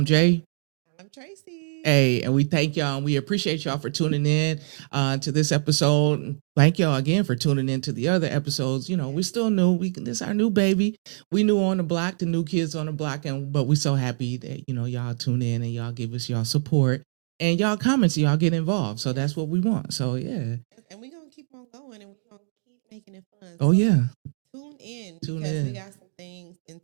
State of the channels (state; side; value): silent; left; digital silence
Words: Jay. I'm Tracy. Hey, and we thank y'all and we appreciate y'all for tuning in to this episode. Thank y'all again for tuning in to the other episodes. You know, Yes. we still new. This is our new baby. We new on the block, the new kids on the block, but we so happy that y'all tune in and y'all give us y'all support and y'all comments. Y'all get involved. So that's what we want. So yeah. Yes, and we're gonna keep on going and we're gonna keep making it fun. Oh yeah. Tune in because we got some things in